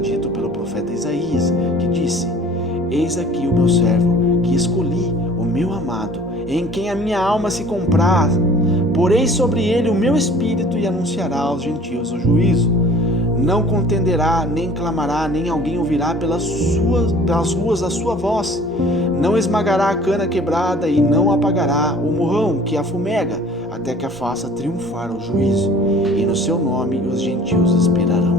pelo profeta Isaías, que disse: eis aqui o meu servo, que escolhi, o meu amado, em quem a minha alma se compraz. Porei sobre ele o meu espírito e anunciará aos gentios o juízo. Não contenderá, nem clamará, nem alguém ouvirá pelas ruas a sua voz. Não esmagará a cana quebrada e não apagará o morrão que a fumega, até que a faça triunfar o juízo. E no seu nome os gentios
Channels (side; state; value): both; normal; correlation 0.49